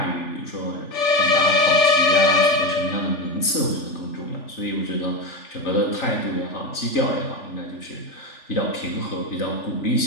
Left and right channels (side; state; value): right; late; 3.4 ms